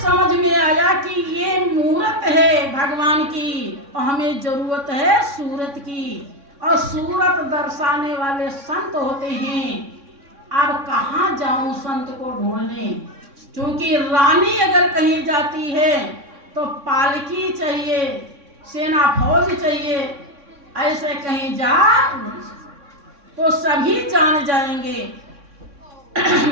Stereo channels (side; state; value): left; late; 3.6 ms